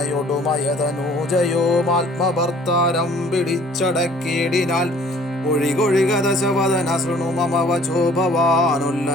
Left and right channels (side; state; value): both; normal; correlation 0.54